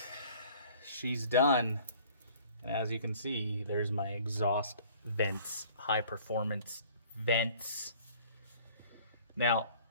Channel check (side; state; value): both; inverted; correlation -0.52